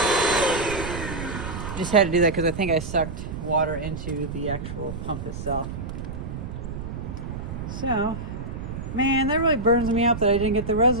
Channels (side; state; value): right; noise; rumble, 7 dB below the sound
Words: Just had to do that because I think I sucked water into the actual pump itself. So, man, that really burns me up that I didn't get the